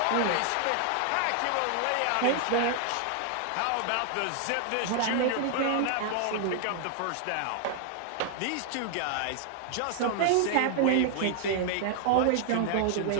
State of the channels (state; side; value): different; both; correlation 0.00